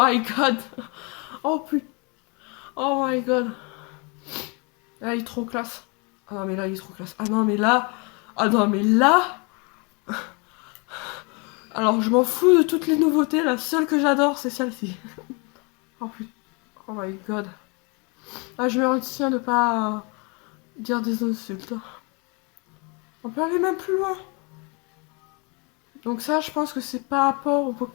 god. Oh putain. Oh my god. Là, il est trop classe. Ah non, mais là, il est trop classe. Ah non, mais là. Ah non, mais là. Alors, je m'en fous de toutes les nouveautés. La seule que j'adore, c'est celle-ci. Oh putain. Oh my god. Ah, je me retiens de pas dire des insultes. On peut aller même plus loin. Donc ça, je pense que c'est par rapport aux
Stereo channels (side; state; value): right; quieter; 31.6 dB